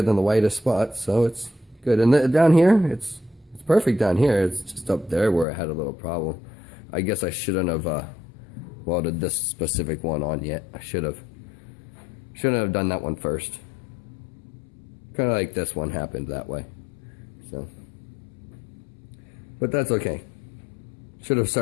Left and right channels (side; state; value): right; drops out; at 5.5 s